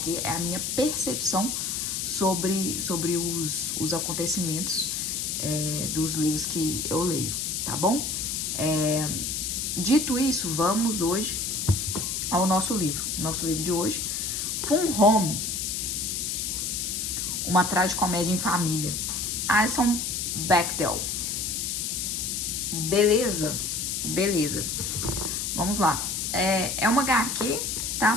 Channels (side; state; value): left; noise; hiss, 1 dB below the sound